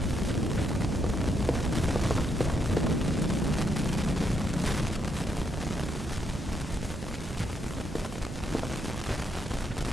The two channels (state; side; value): normal; both; correlation 0.77